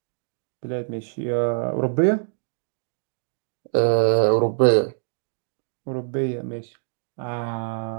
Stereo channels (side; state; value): left; silent; digital silence